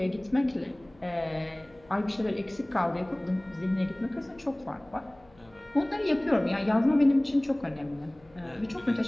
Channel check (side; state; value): left; noise; hum, 29 dB below the sound